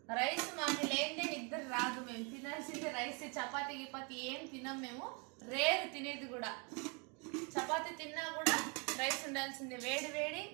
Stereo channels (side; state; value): left; quieter; 33.6 dB